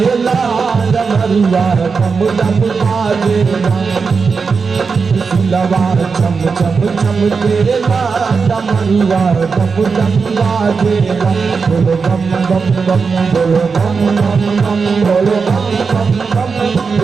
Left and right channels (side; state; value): left; quieter; 5.1 dB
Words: डमरुआ डम डम बाजेला सुलवा चम चम चमकेला डमरुआ डम डम बाजेला बोलो बम बम बम बोलो बम बम बम बोलो बम बम बम